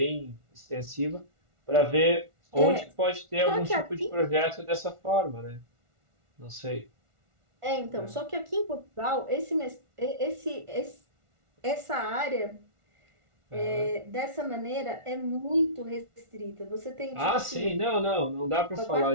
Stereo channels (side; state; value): left; late; 1.4 ms